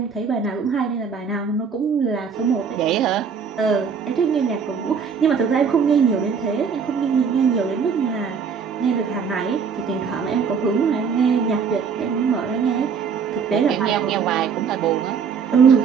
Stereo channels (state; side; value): quieter; left; 6.2 dB